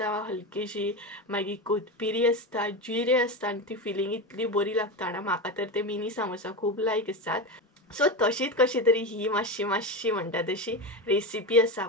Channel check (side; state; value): both; normal; correlation 0.19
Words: हलकीशी, मागीर कोथमिरी आसता, जिरे आसता आनी ती फिलींग इतली बरी लागता ना. म्हाका तर ते मिनी सामोसा खूब लायक आसात. सो तशीच कशी तरी ही मातशी म्हणटा तशी रेसिपी आसा,